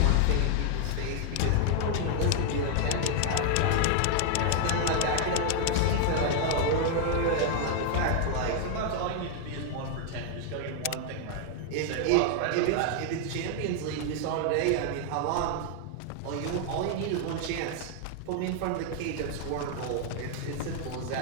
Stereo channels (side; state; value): both; different; correlation 0.00